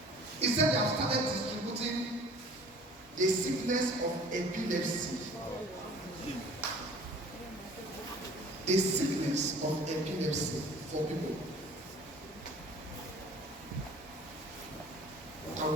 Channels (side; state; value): both; normal; correlation 0.48